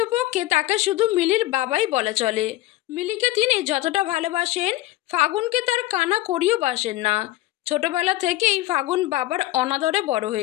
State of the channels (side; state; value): right; quieter; 16.5 dB